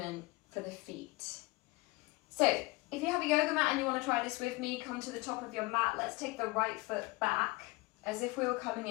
for the feet. So if you have a yoga mat and you want to try this with me, come to the top of your mat. Let's take the right foot back as if we were coming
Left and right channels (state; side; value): quieter; right; 23.3 dB